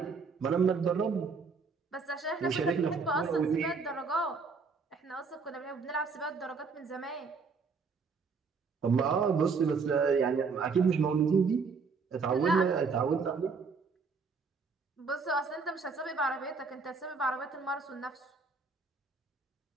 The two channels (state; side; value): quieter; left; 4.8 dB